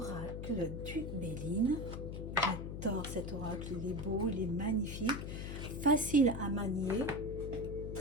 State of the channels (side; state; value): left; noise; hum, 6 dB below the sound